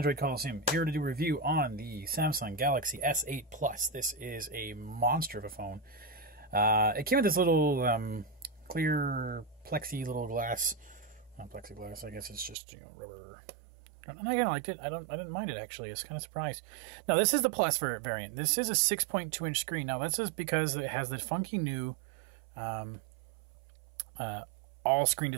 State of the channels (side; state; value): left; drops out; at 12.6 s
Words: Coliseum, here to do a review on the Samsung Galaxy S8 Plus. This is a monster of a phone. It came with this little clear plexi little glass, not plexiglass, I guess it's just, you know, rubber. And I kind of liked it. I didn't mind it actually. I was kind of surprised. Now this is the Plus variant. This is a 6.2-inch screen. Now that's just because it has the funky new all-screen